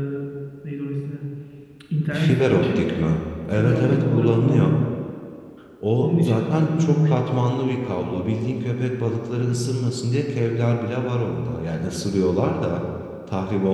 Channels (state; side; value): identical; both; correlation 1.00